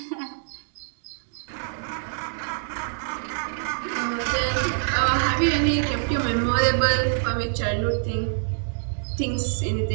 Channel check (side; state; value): left; silent; digital silence